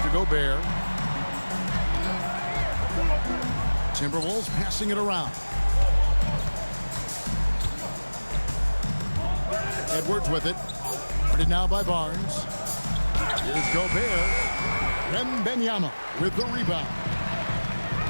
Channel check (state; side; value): inverted; both; correlation -1.00